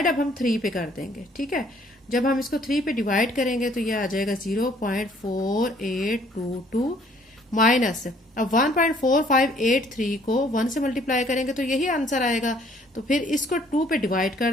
अब हम 3 पे कर देंगे। ठीक है, जब हम इसको 3 पे डिवाइड करेंगे तो ये आ जाएगा 0.4822 माइनस अब 1.4583 को 1 से मल्टीप्लाई करेंगे तो यही आंसर आएगा। तो फिर इसको 2 पे डिवाइड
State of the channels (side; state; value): both; normal; correlation 0.61